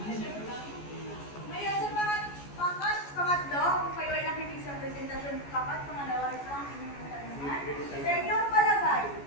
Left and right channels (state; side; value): late; right; 14 ms